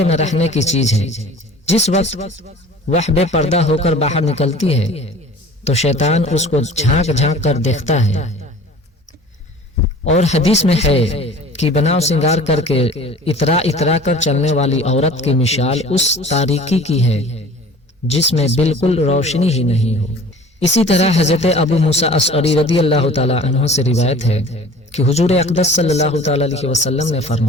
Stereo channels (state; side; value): normal; both; correlation 0.44